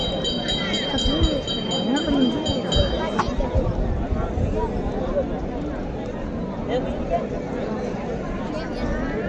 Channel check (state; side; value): identical; both; correlation 1.00